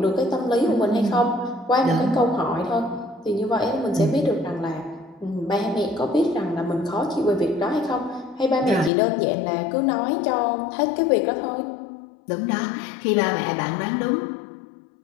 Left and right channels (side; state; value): right; drops out; at 8.9 s